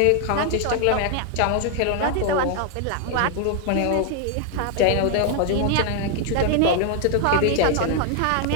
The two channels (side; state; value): both; different; correlation 0.00